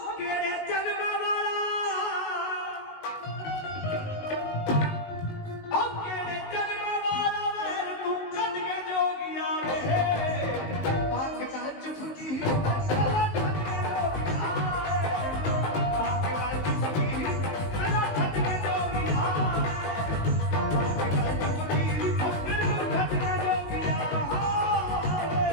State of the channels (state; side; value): late; right; 19 ms